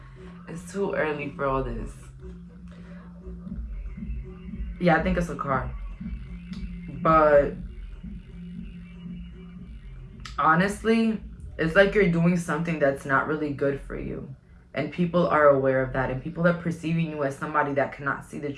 It's too early for all this. Yeah, I think it's a car. But honestly, it's like you're doing something that's not really good for you. And people are aware of that. And people are perceiving you as somebody that cannot see the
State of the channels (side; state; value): both; identical; correlation 1.00